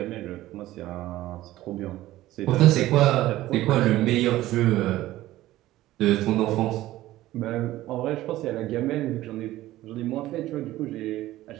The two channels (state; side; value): quieter; left; 15.7 dB